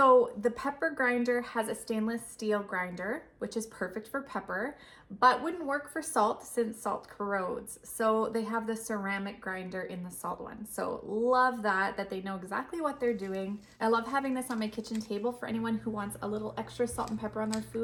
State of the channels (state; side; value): identical; both; correlation 1.00